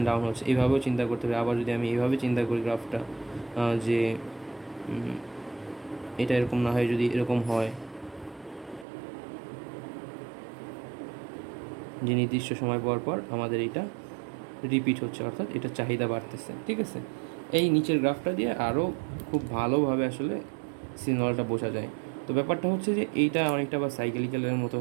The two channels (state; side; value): drops out; left; at 8.8 s